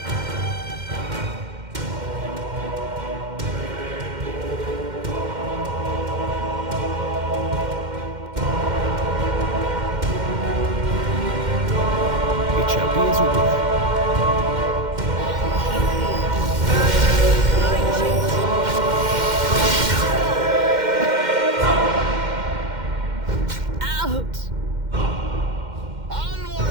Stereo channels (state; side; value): late; left; 2.1 ms